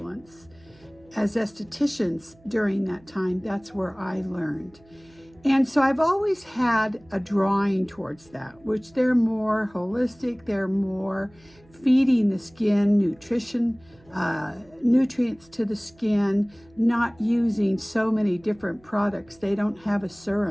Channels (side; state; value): right; noise; hum, 29 dB below the sound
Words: as estheticians during that time. That's where I learned. And so I've always had a drawing towards that, which they're more holistic, they're more feeding the skin nutrition, nutrients to the skin, not using so many different products. They don't have a